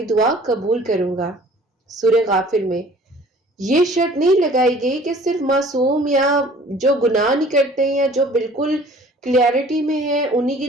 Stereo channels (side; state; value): both; normal; correlation 0.50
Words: دعا قبول کروں گا۔ سورہ غافر میں یہ شرط نہیں لگائی گئی کہ صرف معصوم یا جو گناہ نہیں کرتے یا جو بالکل کلیئرٹی میں ہے انہی کی